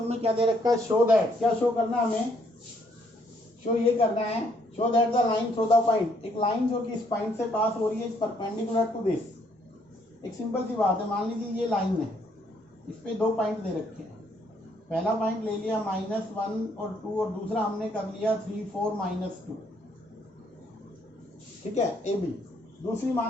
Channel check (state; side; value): normal; both; correlation 0.69